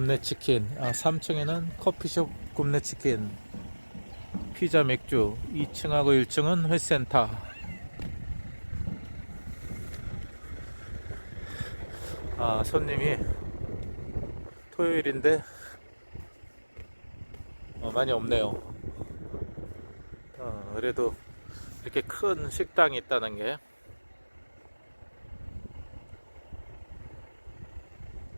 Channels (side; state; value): both; inverted; correlation -1.00